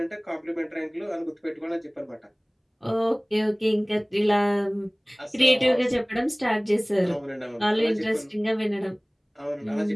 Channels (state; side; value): identical; both; correlation 1.00